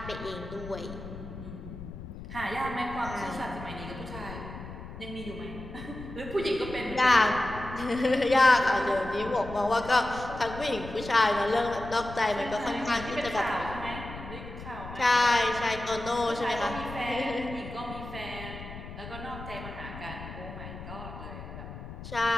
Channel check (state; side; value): noise; left; rumble, 12 dB below the sound